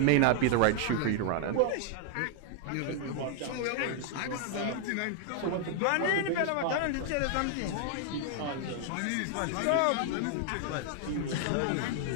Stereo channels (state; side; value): different; both; correlation 0.00